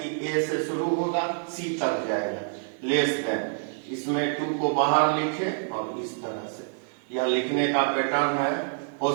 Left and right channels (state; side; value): silent; left; digital silence